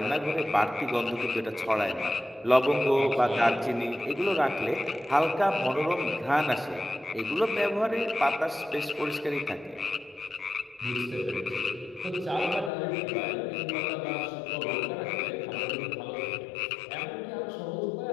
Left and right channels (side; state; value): right; drops out; at 12.7 s